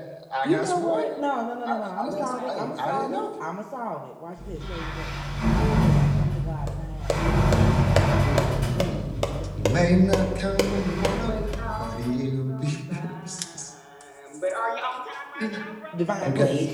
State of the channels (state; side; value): identical; both; correlation 1.00